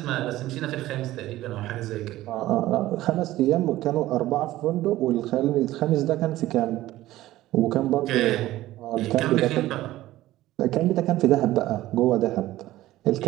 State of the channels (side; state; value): left; quieter; 15.8 dB